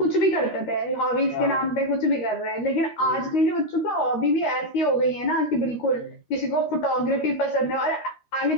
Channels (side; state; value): right; late; 13 ms